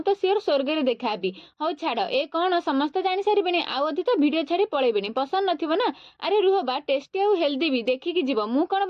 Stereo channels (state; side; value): identical; both; correlation 1.00